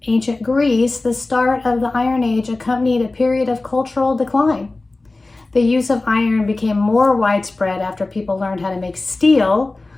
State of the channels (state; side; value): quieter; right; 3.2 dB